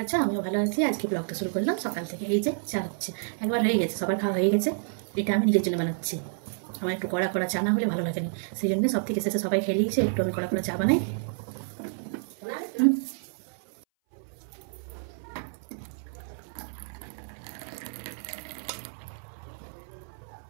আছে, আমিও ভালো আছি। আজকে ব্লগটা শুরু করলাম সকাল থেকে। এই যে চা হচ্ছে, একবার হয়ে গেছে, সবার খাওয়া হয়ে গেছে। এটা আমি নিজের জন্য বানাচ্ছি। আমার একটু কড়া কড়া চা না হলে ভালো লাগে না, সেই জন্য সব থেকে শেষে সবাই খেয়ে নিয়েছে, একটু আমি কড়া কড়া চা বানাই।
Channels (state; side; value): silent; left; 58 dB below the other